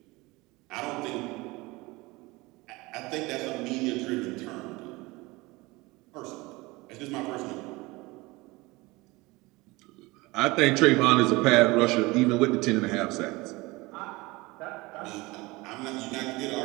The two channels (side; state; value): left; quieter; 22.6 dB